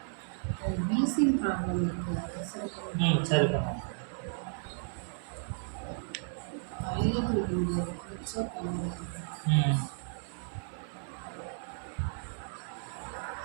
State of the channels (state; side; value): silent; left; 55 dB below the other